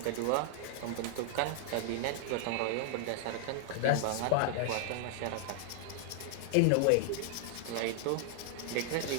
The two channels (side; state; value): both; different; correlation 0.00